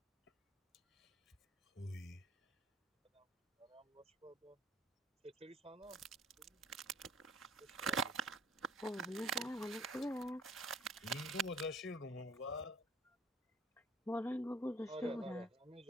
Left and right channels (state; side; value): normal; both; correlation 0.56